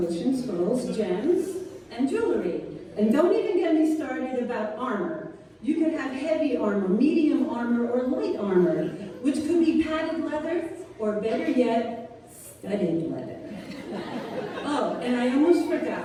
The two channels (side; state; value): both; identical; correlation 1.00